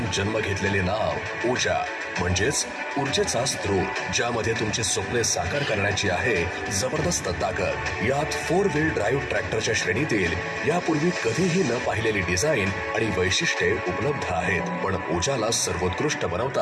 जन्म घेतलेले नाव ओजा म्हणजेच ऊर्जेचा स्रोत, ज्यामध्ये तुमची स्वप्ने साकार करण्याची आहे जबरदस्त ताकद. यात 4 व्हील ड्राईव्ह ट्रॅक्टरच्या श्रेणीतील यापूर्वी कधीही न पाहिलेली डिझाईन आणि वैशिष्ट्ये उपलब्ध आहेत. पण ओजाला सर्वोत्कृष्ट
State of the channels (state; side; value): identical; both; correlation 1.00